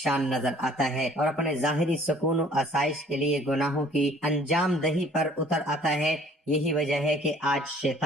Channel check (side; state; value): both; normal; correlation 0.55